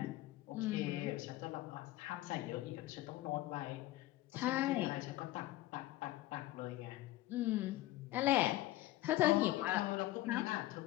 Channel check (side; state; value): right; quieter; 16.5 dB